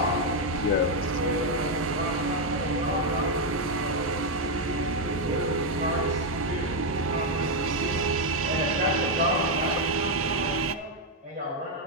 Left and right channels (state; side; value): normal; both; correlation 0.02